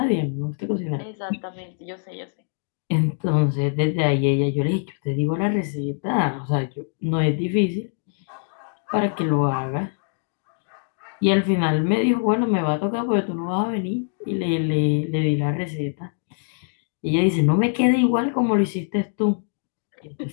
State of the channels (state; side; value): silent; right; digital silence